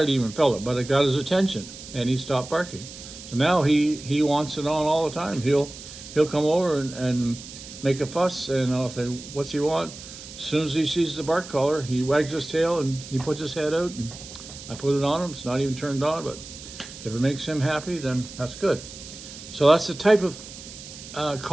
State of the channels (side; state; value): right; noise; hiss, 14 dB below the sound